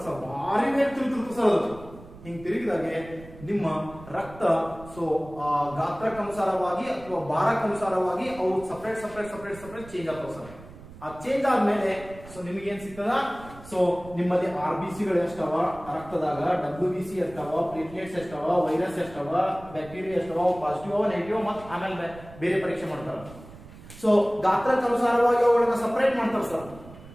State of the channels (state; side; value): noise; right; rumble, 18 dB below the sound